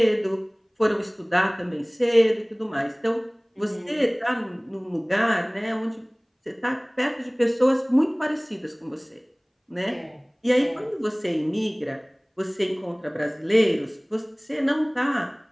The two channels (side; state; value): both; identical; correlation 1.00